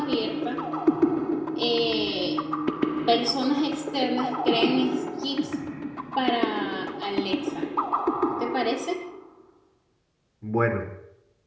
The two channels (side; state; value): both; identical; correlation 1.00